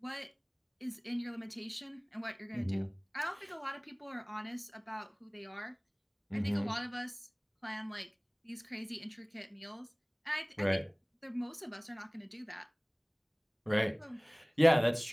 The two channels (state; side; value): identical; both; correlation 1.00